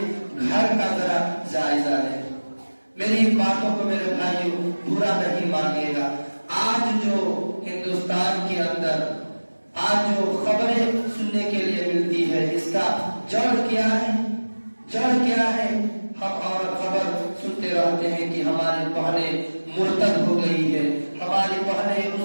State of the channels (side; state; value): both; inverted; correlation -1.00